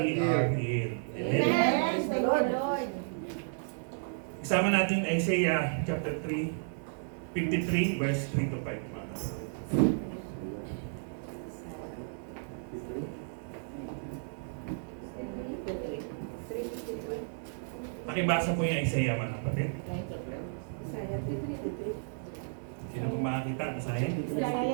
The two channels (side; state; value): left; silent; 56 dB below the other